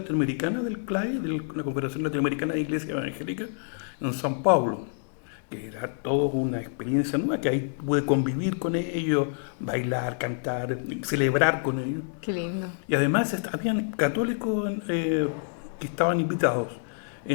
del CLAI, de la Confederación Latinoamericana de Iglesias Evangélicas, en San Pablo, que era toda una experiencia nueva, que ahí pude convivir con ellos, bailar, cantar, celebrar con ellos. Qué lindo. Y además habían católicos que estaban invitados,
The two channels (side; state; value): right; silent; digital silence